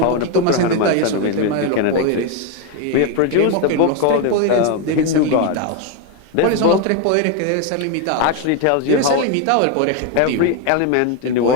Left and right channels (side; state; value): both; different; correlation 0.02